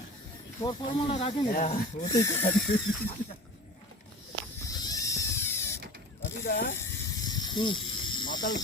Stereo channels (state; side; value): normal; both; correlation 0.38